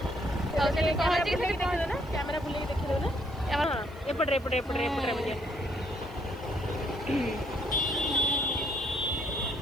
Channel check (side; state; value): right; noise; hiss, 27 dB below the sound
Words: कैमरा बुले देखिए ना एपटे एपटे एपटे एपटे